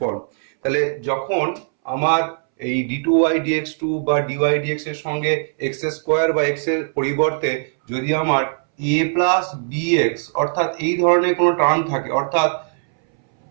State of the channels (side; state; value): left; silent; 66 dB below the other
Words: তাহলে যখন আমার এই d2y dx2 বা dy dx এর সঙ্গে x স্কোয়ার বা x এর পরিবর্তে যদি আমার a প্লাস bx অর্থাৎ এই ধরনের কোনো টার্ম থাকে, অর্থাৎ